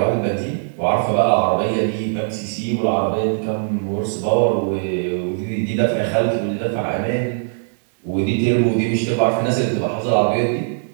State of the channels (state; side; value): silent; left; digital silence